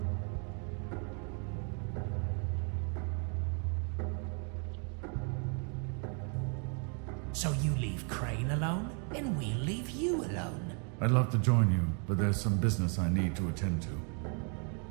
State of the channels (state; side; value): quieter; left; 39.5 dB